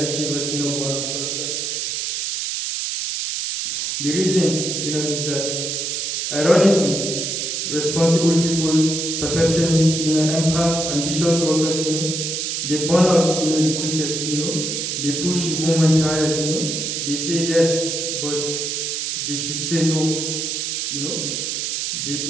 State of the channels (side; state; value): right; noise; hiss, 2 dB below the sound